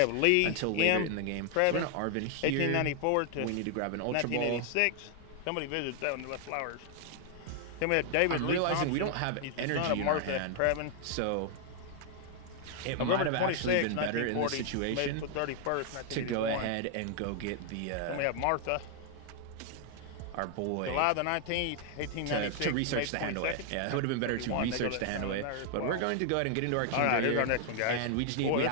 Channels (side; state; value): both; different; correlation 0.00